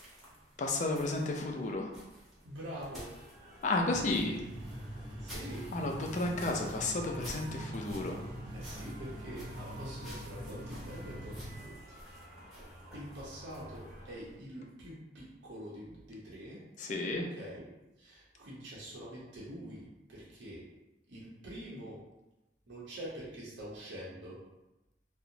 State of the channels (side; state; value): both; normal; correlation 0.38